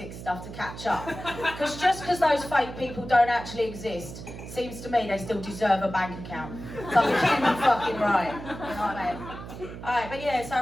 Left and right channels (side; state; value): right; noise; hum, 11 dB below the sound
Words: stuff to catch up. Because just because those fake people don't actually exist, seems to me they still deserve a bank account. Something fucking right. You know what I mean? Alright, but yeah,